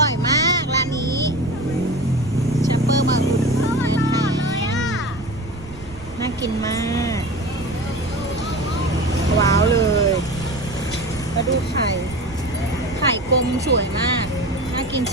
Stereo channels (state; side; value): noise; right; rumble, 16 dB below the sound